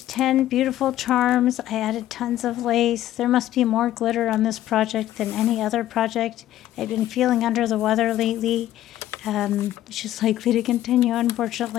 10 beautiful charms. I added tons of lace. There must be more glitter on this project than any other project. I've been feeling under the weather lately. It's just likely to continue,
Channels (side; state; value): right; quieter; 13.3 dB